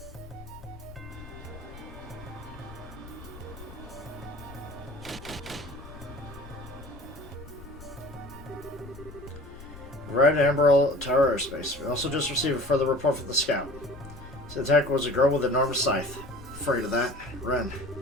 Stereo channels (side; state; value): left; noise; rumble, 18 dB below the sound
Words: Red Emerald Tower airspace. We also just received a further report from the scout. The attacker was a girl with an enormous scythe. Afraid of that. Ren,